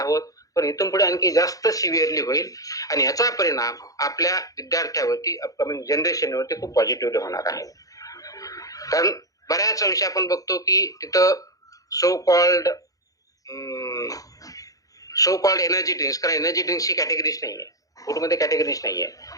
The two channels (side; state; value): right; late; 0.17 ms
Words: पण इथून पुढे आणखी जास्त सिव्हिअरली होईल आणि याचा परिणाम आपल्या विद्यार्थ्यावरती अपकमिंग जनरेशनवरती खूप पॉझिटिव्हली होणार आहे. कारण बऱ्याच अंशी आपण बघतो की तिथं सो कॉल्ड एनर्जी ड्रिंक्स, कारण एनर्जी ड्रिंक्सची कॅटेगरीज नाहीये, फूडमध्ये कॅटेगरीज नाहीये.